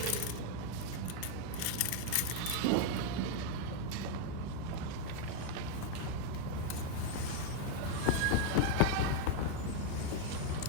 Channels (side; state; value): both; different; correlation 0.00